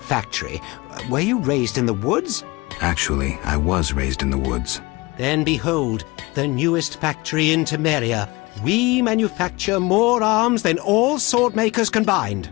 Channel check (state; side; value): quieter; right; 23.3 dB